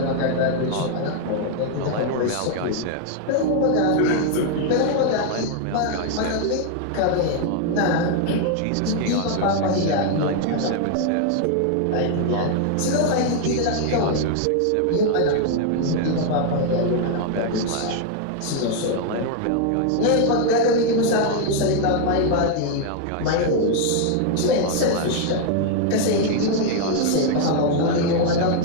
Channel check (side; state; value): both; different; correlation 0.00